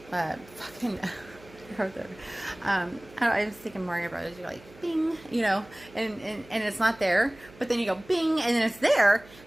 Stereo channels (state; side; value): noise; right; hum, 22 dB below the sound